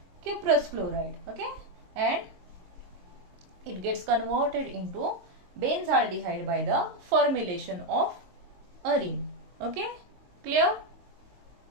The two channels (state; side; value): late; left; 22 ms